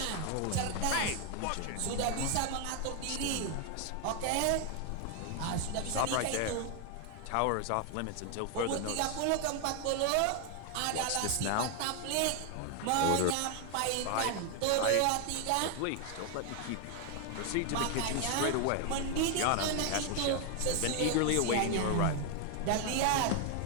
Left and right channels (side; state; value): both; different; correlation 0.01